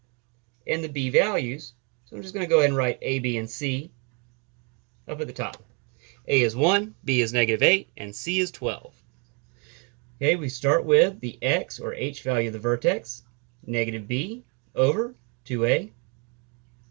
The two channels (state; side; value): quieter; left; 35.2 dB